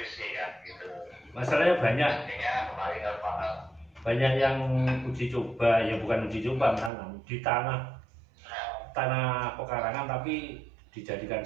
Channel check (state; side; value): drops out; left; at 6.9 s